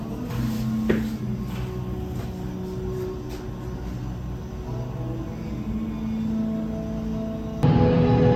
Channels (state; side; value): identical; both; correlation 1.00